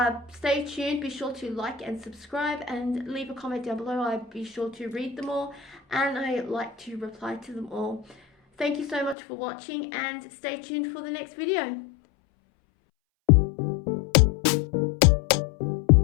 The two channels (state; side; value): drops out; right; at 9.2 s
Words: stay tuned. Be sure to like and subscribe and leave a comment down below. I'd be sure to read them all, and I like to reply to them all. Thank you so much for watching, and stay tuned for the next video.